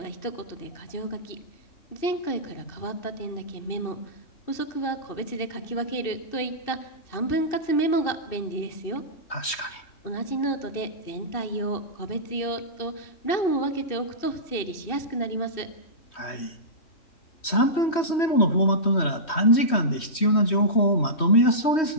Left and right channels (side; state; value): right; late; 3.1 ms